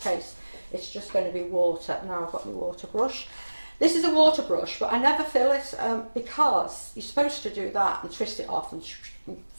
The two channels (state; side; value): inverted; both; correlation -1.00